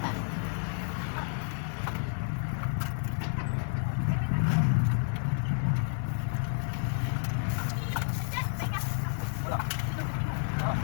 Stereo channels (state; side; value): silent; right; digital silence